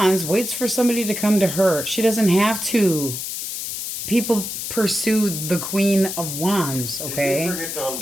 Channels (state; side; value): noise; left; hiss, 5 dB below the sound